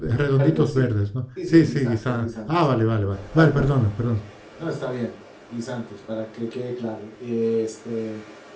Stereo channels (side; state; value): both; identical; correlation 1.00